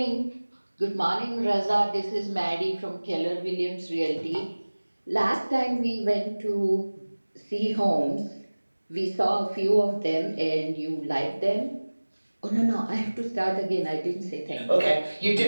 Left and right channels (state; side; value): inverted; both; correlation -1.00